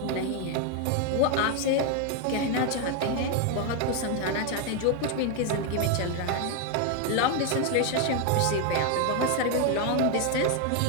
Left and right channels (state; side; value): different; both; correlation 0.01